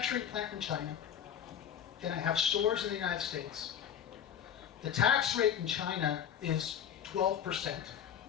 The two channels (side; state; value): right; quieter; 9.1 dB